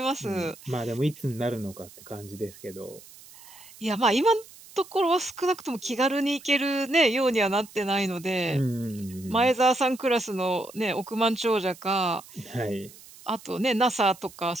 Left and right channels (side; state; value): right; noise; hiss, 21 dB below the sound